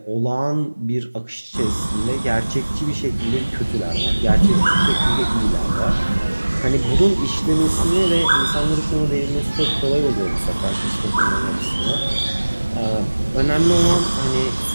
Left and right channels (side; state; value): both; inverted; correlation -1.00